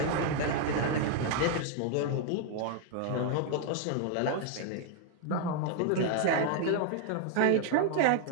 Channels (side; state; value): both; different; correlation 0.00